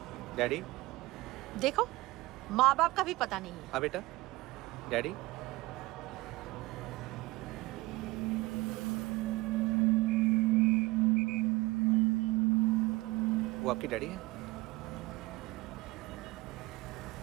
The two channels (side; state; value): left; quieter; 20.7 dB